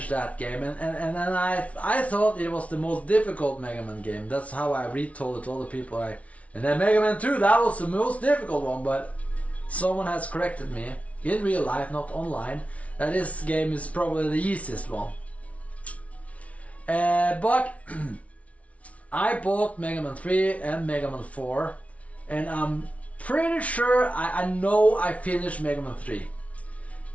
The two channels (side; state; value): right; late; 0.066 ms